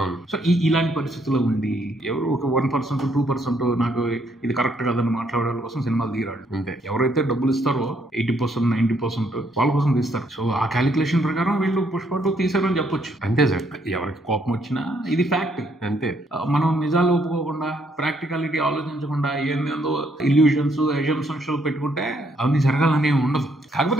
సో ఇలాంటి పరిస్థితుల్లో ఉండి ఎవరు ఒక 1% 2% నాకు ఇది కరెక్ట్ కాదని మాట్లాడే వాళ్ళ కోసం సినిమాలు తీరాడు. ఎవరైతే డబ్బులు ఇస్తారో 80% 90% వాళ్ళ కోసం తీస్తారు. సో ఆ క్యాలిక్యులేషన్ ప్రకారం వీళ్ళు పుష్ప 2 తీసారని చెప్పొచ్చు. అంతే సార్, ఎవరికి కోపం వచ్చినా ఇది ఫ్యాక్ట్. అంతే. మనం నిజాలు ఒప్పుకోకుండా, ప్రాక్టికాలిటీ ఆలోచించకుండా ఏందో ఇల్యూషన్స్, అజంప్షన్స్ పెట్టుకుంటే అవన్నీ జరగాలని ఉండదు. కాకపోతే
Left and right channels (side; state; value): both; normal; correlation 0.71